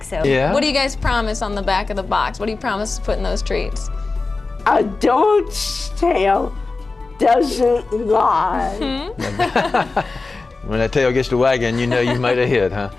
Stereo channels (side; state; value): right; quieter; 3.8 dB